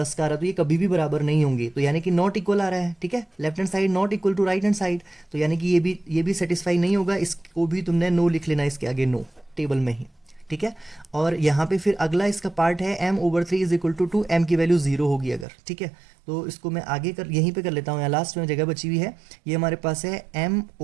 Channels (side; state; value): left; drops out; at 15.5 s